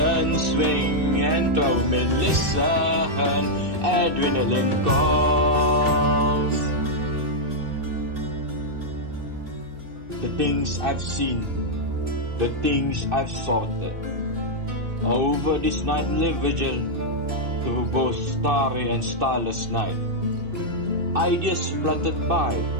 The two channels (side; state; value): left; late; 2.6 ms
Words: swing and throw me. Listen, adrenaline calls. The things I've seen, the things I've sorted. Over this nightly vigil, through both starry and starless night, ideas fluttered by,